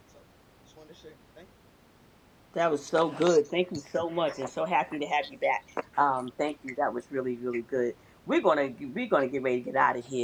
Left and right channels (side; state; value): both; identical; correlation 1.00